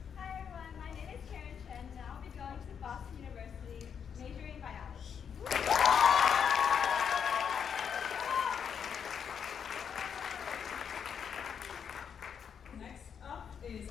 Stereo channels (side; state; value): right; quieter; 7.4 dB